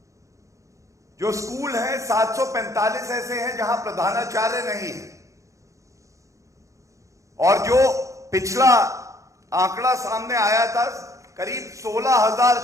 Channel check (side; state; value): left; late; 0.15 ms